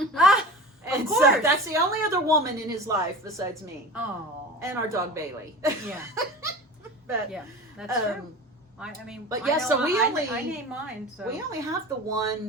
Ah, And of so course. that's the only other woman in his life besides me Oh. and our dog Bailey. Yeah. But Yeah, that's true. um, I mean, but I yeah, know so we I only- name mine. So we only have the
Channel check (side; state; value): both; normal; correlation 0.34